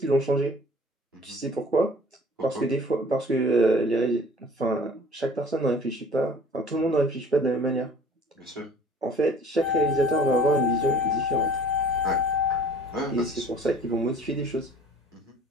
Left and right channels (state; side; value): normal; both; correlation 0.49